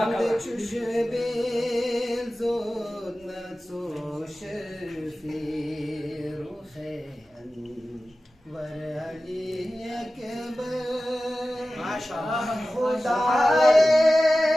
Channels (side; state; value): both; normal; correlation 0.95